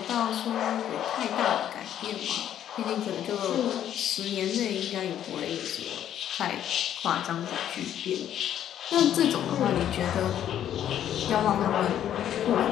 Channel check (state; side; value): quieter; right; 10.6 dB